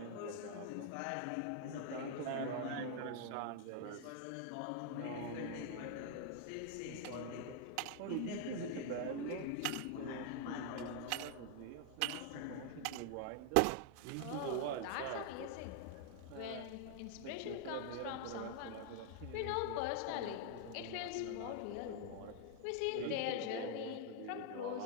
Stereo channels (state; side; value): different; both; correlation 0.00